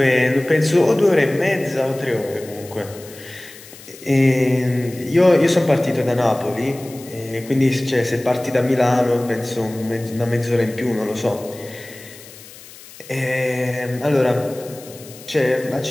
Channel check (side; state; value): left; noise; hiss, 19 dB below the sound